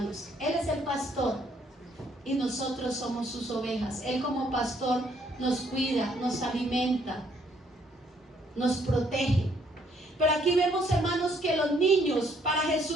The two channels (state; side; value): normal; both; correlation 0.67